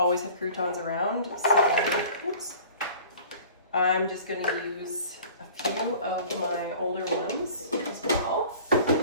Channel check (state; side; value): inverted; both; correlation -0.45